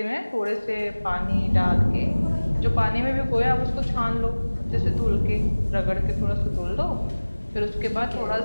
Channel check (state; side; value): inverted; both; correlation -1.00